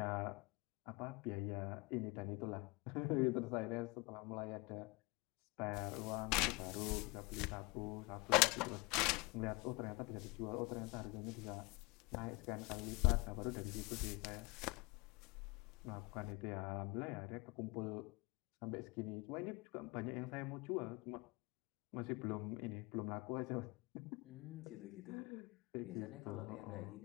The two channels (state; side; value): quieter; right; 25.9 dB